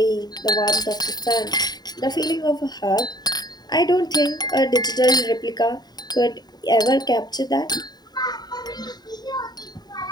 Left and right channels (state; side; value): late; right; 0.20 ms